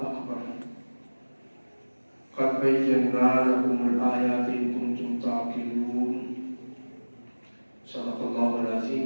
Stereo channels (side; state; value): both; inverted; correlation -1.00